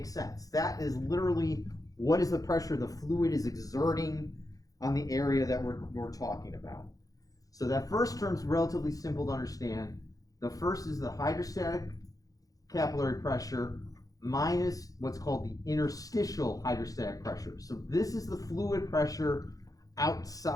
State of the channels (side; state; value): right; late; 0.17 ms